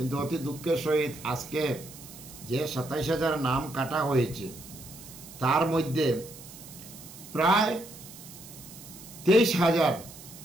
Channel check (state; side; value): noise; right; hiss, 16 dB below the sound